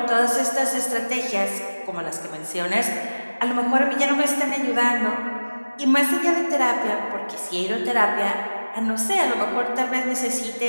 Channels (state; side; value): inverted; both; correlation -1.00